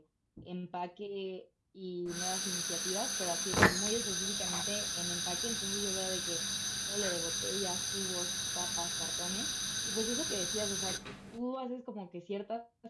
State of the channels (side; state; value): both; identical; correlation 1.00